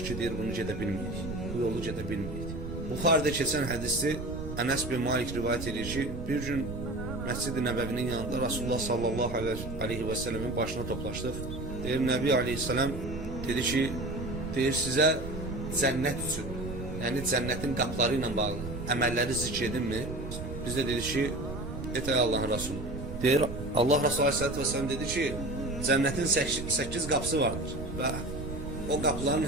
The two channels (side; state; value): right; noise; rumble, 8 dB below the sound